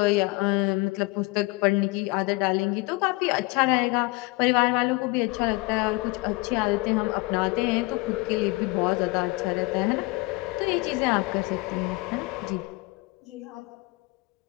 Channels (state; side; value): quieter; right; 24.2 dB